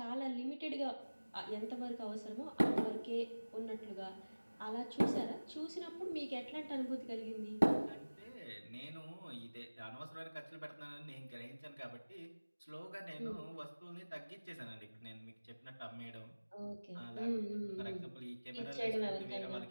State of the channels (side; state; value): both; inverted; correlation -1.00